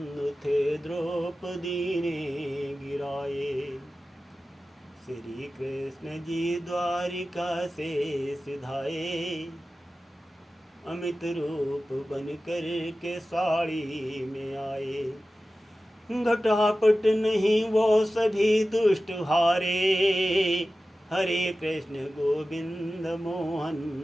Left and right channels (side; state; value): both; normal; correlation 0.95